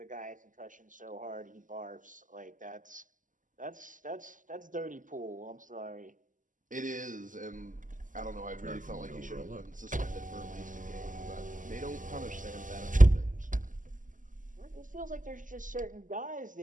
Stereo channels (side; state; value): left; late; 0.38 ms